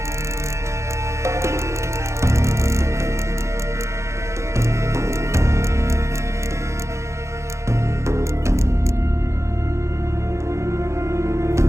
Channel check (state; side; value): late; left; 0.14 ms